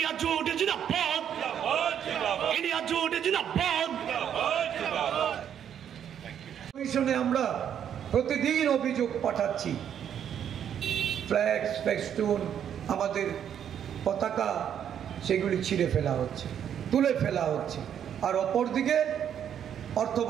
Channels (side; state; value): left; quieter; 9.1 dB